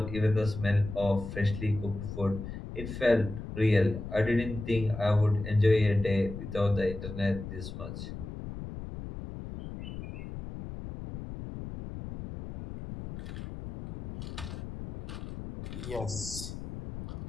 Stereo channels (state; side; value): noise; left; rumble, 9 dB below the sound